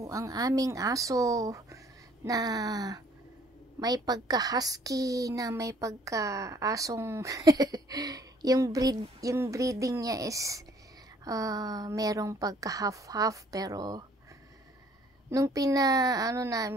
ang aming aso na may pagka-husky, na may pagka-asong yung breeding niya is merong pagka-half-half, pero nung pinaano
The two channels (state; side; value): normal; both; correlation 0.59